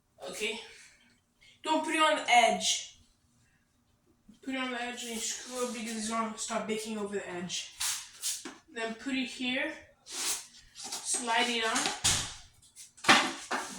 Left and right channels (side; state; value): both; identical; correlation 1.00